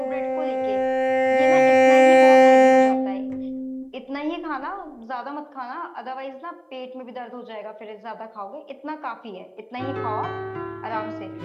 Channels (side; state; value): both; identical; correlation 1.00